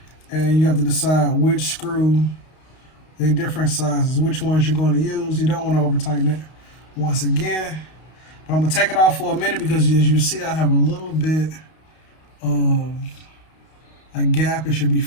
and you have to decide which screw, they're different sizes, which ones you're going to use. You don't want to over tighten it once again. But I'm going to take it off for a minute because as you see, I have a little bit of a gap. It should be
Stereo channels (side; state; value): right; late; 32 ms